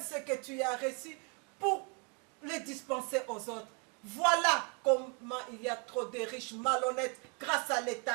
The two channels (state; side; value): quieter; left; 35.8 dB